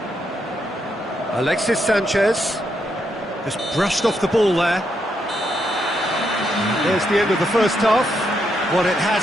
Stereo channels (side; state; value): both; normal; correlation 0.79